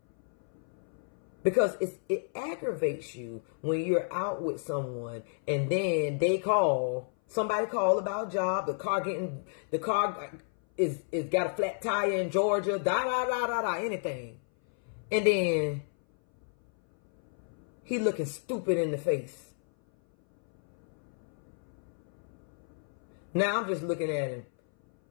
Because it aggravates you when you're out with someone and then somebody call about a job, the car is got a flat tire in Georgia, anything. And then he looking stupid in the face. Now I'm just looking at him.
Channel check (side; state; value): right; silent; 57 dB below the other